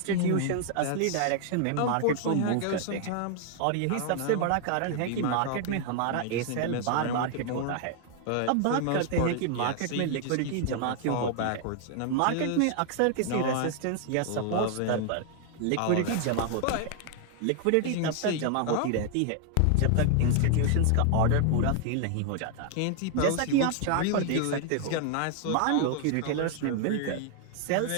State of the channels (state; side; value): different; both; correlation 0.00